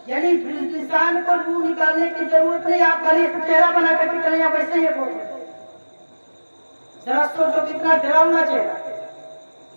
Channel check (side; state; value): both; inverted; correlation -1.00